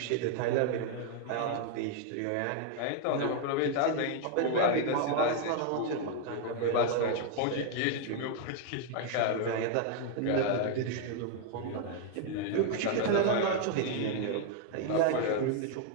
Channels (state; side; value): different; both; correlation 0.00